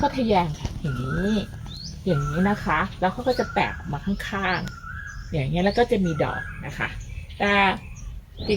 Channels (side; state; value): both; identical; correlation 1.00